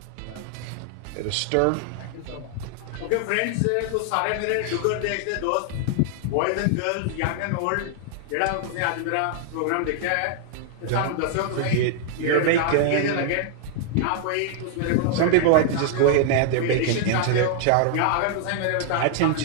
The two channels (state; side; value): different; both; correlation 0.00